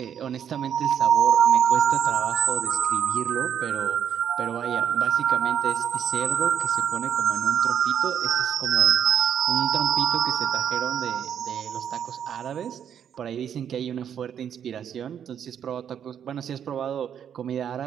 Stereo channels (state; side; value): quieter; left; 8.8 dB